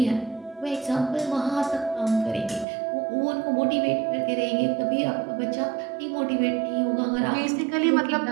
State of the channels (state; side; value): drops out; left; at 2.7 s